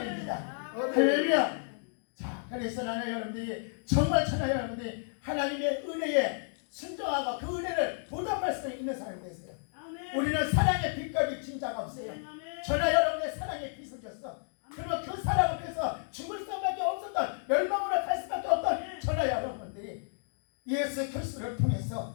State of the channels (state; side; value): silent; right; digital silence